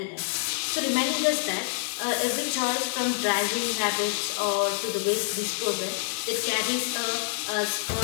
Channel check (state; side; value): silent; right; digital silence